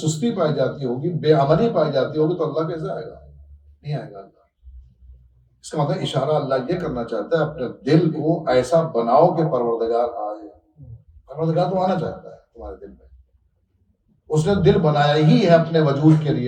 پائی جاتی ہوگی، بے عملی پائی جاتی ہوگی تو اللہ کیسے آئے گا؟ نہیں آئے گا اللہ۔ اس کا مطلب اشارہ اللہ یہ کرنا چاہتا ہے اپنے دل کو ایسا بناؤ کہ پروردگار آئے۔ پروردگار تو آنا چاہتا ہے تمہارے دل میں، اس نے دل بنایا ہی ہے اپنے وجود کے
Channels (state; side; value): identical; both; correlation 1.00